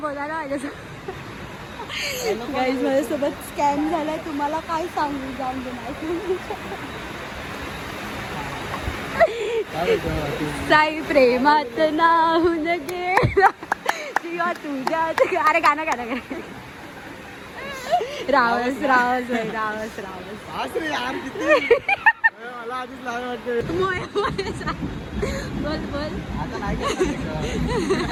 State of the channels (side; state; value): both; identical; correlation 1.00